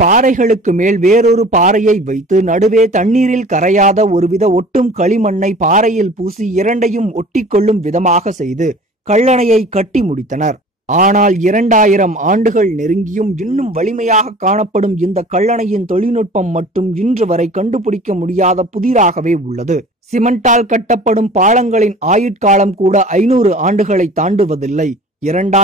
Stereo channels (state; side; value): normal; both; correlation 0.44